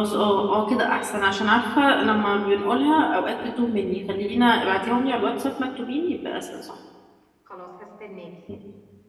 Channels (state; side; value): identical; both; correlation 1.00